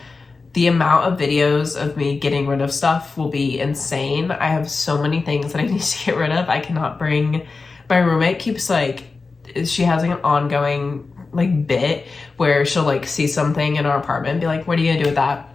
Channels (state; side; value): quieter; right; 4.1 dB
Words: the amount of videos of me getting rid of stuff will be insane. I have so many things that I need to get rid of. I cannot bring, my roommate keeps like, she has like an ongoing like bit where she'll like see something in our apartment and be like, what are you gonna do with that?